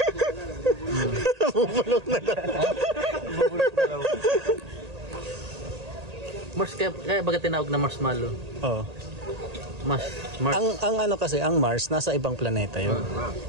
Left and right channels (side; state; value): left; late; 1.8 ms